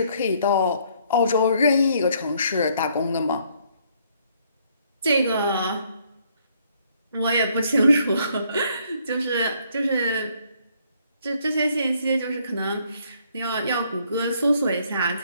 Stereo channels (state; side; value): inverted; both; correlation -0.67